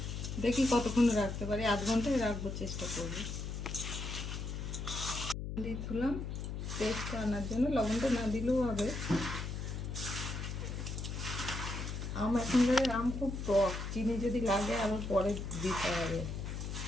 দেখি কতক্ষণ রাখতে পারি, আধ ঘন্টায় রাখবো, চেষ্টা করবো। দিয়ে তুলাম টেস্টটা আনার জন্য, লবণটা না দিলেও হবে। আম এখনকার আম খুব টক, চিনি যদি লাগে আবার পরে দিতে হবে।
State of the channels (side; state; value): left; noise; hum, 5 dB below the sound